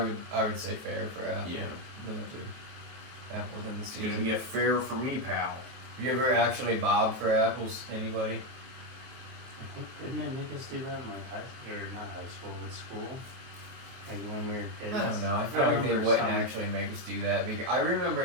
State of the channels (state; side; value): late; left; 23 ms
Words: I would say fair for apple. yeah, Those are apples in the it's gonna season. be a fair for me, pal. Have you ever actually bobbed for apples? Anybody? I think didn't they make us do that in like not high school, but school? Like when we were kids. I don't know. I feel I like they remember wouldn't some- actually make us do that because I remember